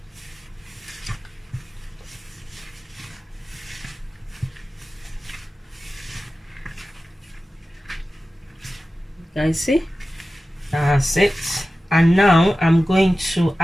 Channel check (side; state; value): both; normal; correlation 0.95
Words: Guys, see, that's it. And now I'm going to